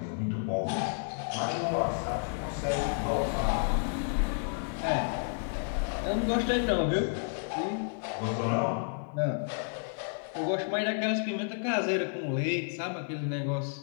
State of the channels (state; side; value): silent; right; 57 dB below the other